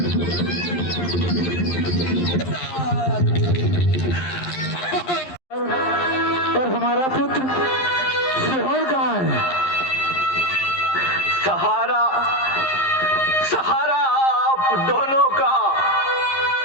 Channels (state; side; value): late; right; 11 ms